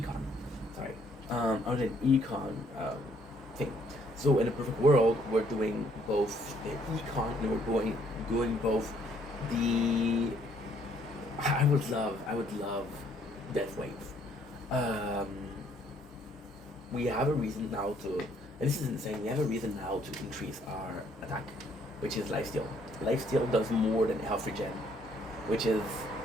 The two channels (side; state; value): both; normal; correlation 0.66